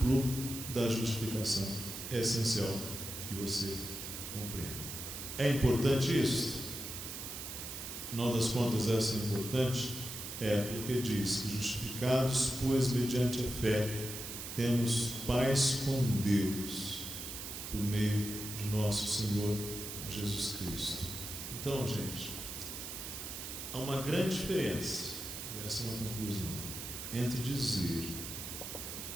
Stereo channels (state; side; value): noise; right; hiss, 7 dB below the sound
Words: da justificação é essencial que você compreenda. É importante isso? Afinal das contas, essa é importante? É porque diz que justificados, pois mediante a fé, temos paz com Deus, por meio de nosso Senhor Jesus Cristo. Então, gente, há uma grande diferença, e essa é uma conclusão, entre dizer